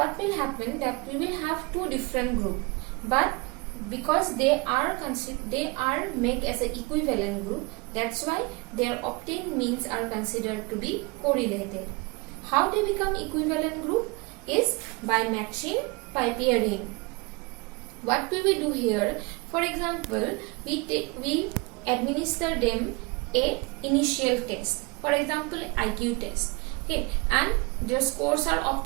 will happen, that we will have two different group, but because they are made as an equivalent group, that's why their obtained means are considered to be correlated. How they become equivalent group is by matching, by pairing. What we will do here, for example, we administer them a initial test, for example IQ test, okay, and their scores are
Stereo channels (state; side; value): quieter; left; 27.2 dB